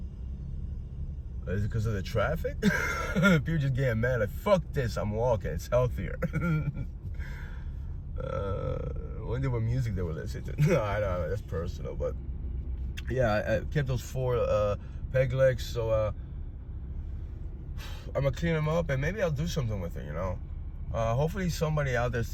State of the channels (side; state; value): both; identical; correlation 1.00